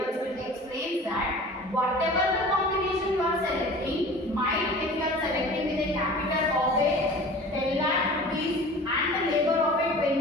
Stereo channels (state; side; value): normal; both; correlation 0.41